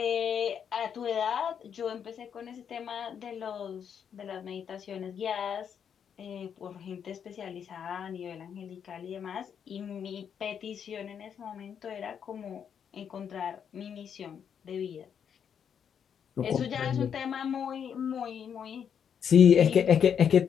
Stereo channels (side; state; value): right; quieter; 7.9 dB